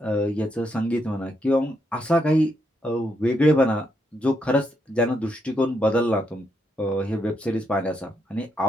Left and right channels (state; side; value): normal; both; correlation 0.79